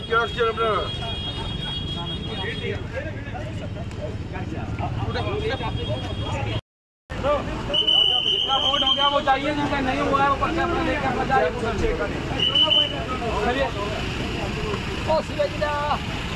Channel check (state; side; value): identical; both; correlation 1.00